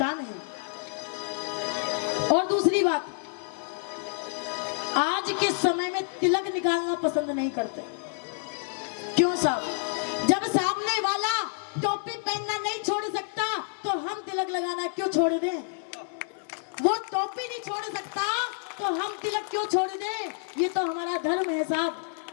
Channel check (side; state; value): right; silent; 59 dB below the other